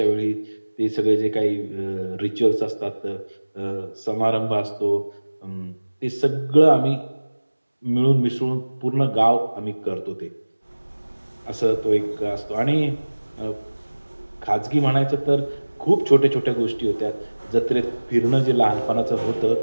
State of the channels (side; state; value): both; inverted; correlation -1.00